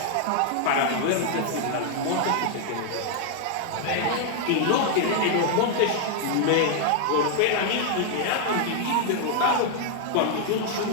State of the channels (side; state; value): both; different; correlation 0.00